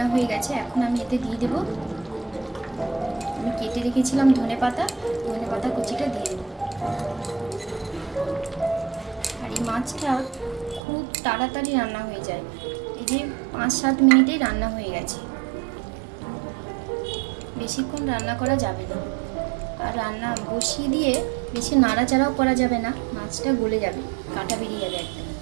হয়ে গেছে। এখন আমি এতে দিয়ে দেব, আমি কেটে রেখেছিলাম ধনে পাতা কুচিটা দিয়ে দেব। আর এই মাছটা খুব তাড়াতাড়ি রান্না হয়ে যায়। এই যে 5-7 মিনিটেই রান্না হয়ে গেছে। বেশিক্ষণ রান্না করা যাবে না। আর রান্না বসিয়ে দিয়ে বেশি নাড়াচাড়াও করা যাবে না, মাছটা গলে যাবে, কাঁটা বেরিয়ে যাবে একদম।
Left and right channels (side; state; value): left; drops out; at 10.8 s